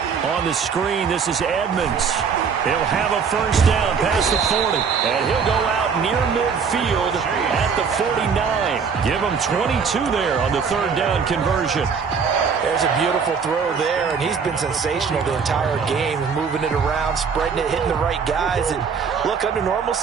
On the screen, this is Edmonds. He'll have a first down past the 40. And he'll go out near midfield at the 49. Give him 22 there on the 3rd down conversion. There's a beautiful throw there, and he's been sensational the entire game, moving it around, spreading it, hitting the right guys. And look, under normal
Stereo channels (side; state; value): left; quieter; 6.0 dB